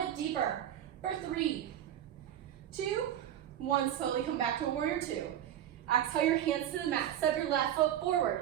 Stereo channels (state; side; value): quieter; left; 11.1 dB